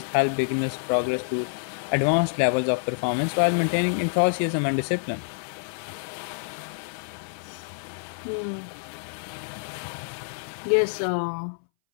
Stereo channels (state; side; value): silent; right; 60 dB below the other